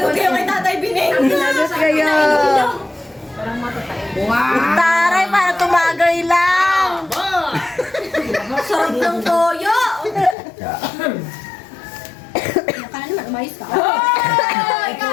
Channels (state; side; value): drops out; right; at 10.4 s